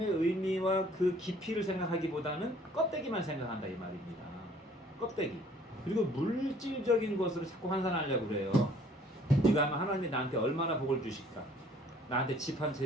의미와 그 깊이를 생각하기보다는 껍데기만 생각한다 이 말입니다. 껍데기. 그리고 물질적인 것으로 자꾸 환산하려고 그래요. 네가 하면 하나님이 나한테 얼마나 복을 주실까? 나한테 집 한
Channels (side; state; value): both; normal; correlation 0.56